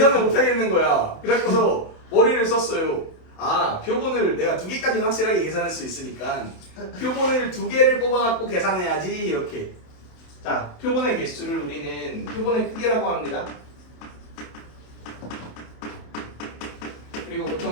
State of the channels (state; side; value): late; right; 27 ms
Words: 못하겠는 거야. 그래서 머리를 썼어요. 표본을 내가 2개까지는 확실하게 계산할 수 있으니까 표본을 2개를 뽑아갖고 계산해야지 이렇게. 자, 표본의 개수를 우리는 표본의 크기라고 합니다. 그리고